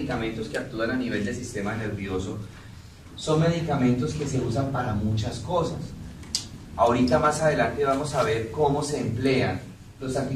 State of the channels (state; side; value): identical; both; correlation 1.00